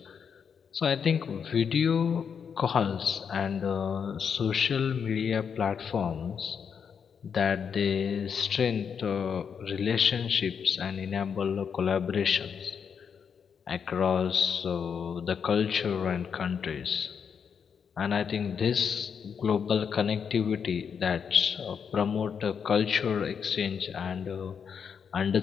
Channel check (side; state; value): right; quieter; 6.9 dB